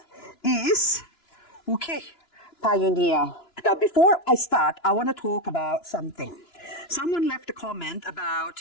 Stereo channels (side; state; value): right; late; 2.9 ms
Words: is, okay, Pioneer. Now before I start, I want to talk about something. Someone left a comment about,